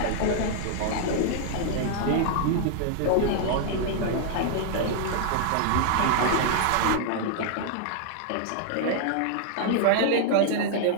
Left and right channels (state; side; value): different; both; correlation -0.01